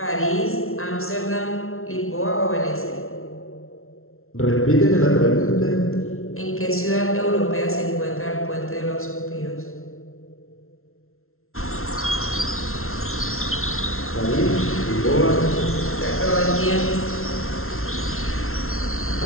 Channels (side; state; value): right; late; 0.62 ms